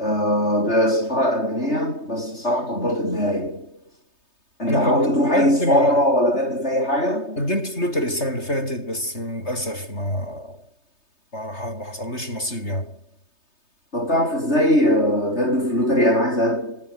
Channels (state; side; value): late; right; 3.3 ms